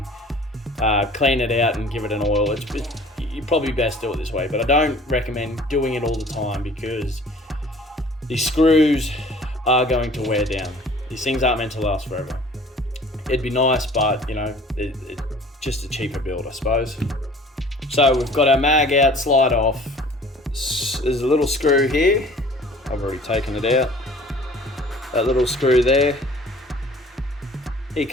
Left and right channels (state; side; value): normal; both; correlation 0.49